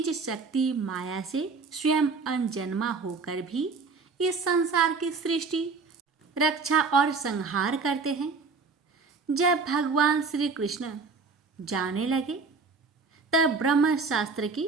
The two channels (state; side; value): quieter; left; 4.6 dB